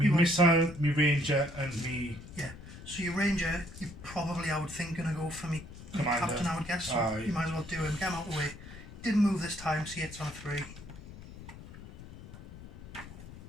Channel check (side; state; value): left; noise; rumble, 15 dB below the sound